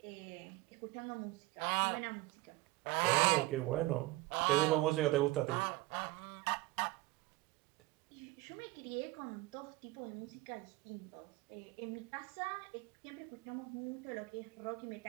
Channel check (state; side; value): quieter; left; 19.7 dB